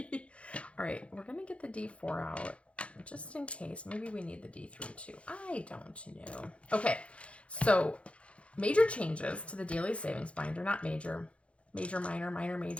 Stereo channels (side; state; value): right; late; 0.061 ms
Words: right, we're going to get the D4 out just in case. Maybe we need the D3 too. I don't know. Okay, so major changes to the daily savings binder. Not major. Major, minor, minor,